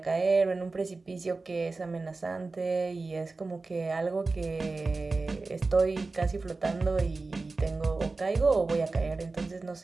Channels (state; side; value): quieter; left; 3.7 dB